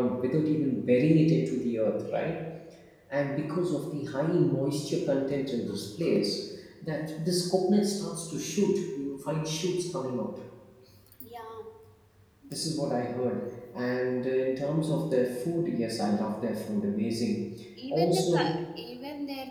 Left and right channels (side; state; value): both; identical; correlation 1.00